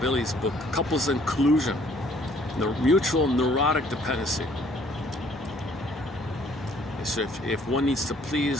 Billy's book, Couples in Collusion, the mutual neurotic dependency. So if one needs to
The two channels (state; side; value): normal; both; correlation 0.60